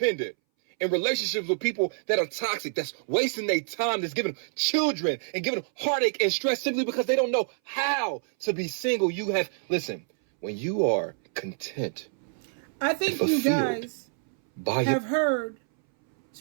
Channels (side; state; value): left; silent; 60 dB below the other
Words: in relationships with people that are toxic, that's wasting their time, that's giving them children and giving them heartache and stress simply because they don't know how to be single. Listen, when you are content, I think you guys have heard,